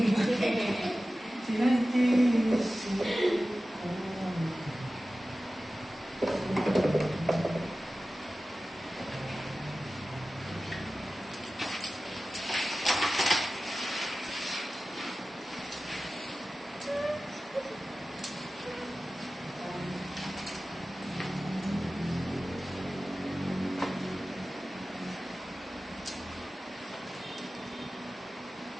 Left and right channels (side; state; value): both; normal; correlation 0.96